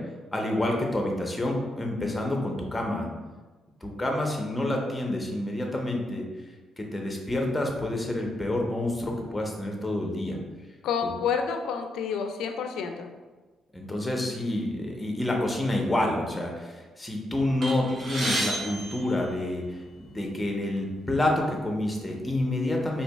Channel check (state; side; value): normal; both; correlation 0.83